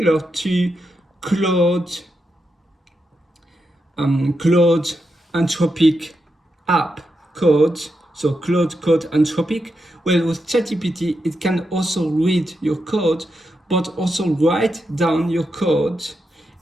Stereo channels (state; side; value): normal; both; correlation 0.85